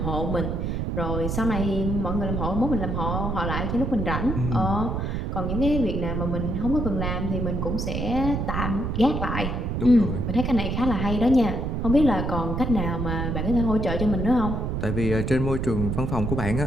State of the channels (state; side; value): noise; right; rumble, 1 dB below the sound